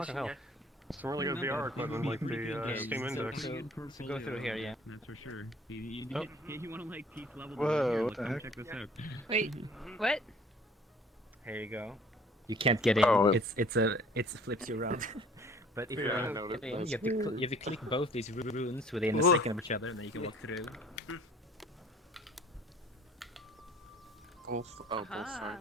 fucking hell. Some really good VR equipment like the Steam Index. So go through here, yeah. That's for sure. You want to like peak level? Whoa, Here, what look, the come heck? check this out. Wait, what? Here you go. You can't get in. Oh, It flips you around. But if you want to get in, you have to click both these runes within a second of each other, and then you can walk through. Both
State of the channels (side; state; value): both; normal; correlation 0.53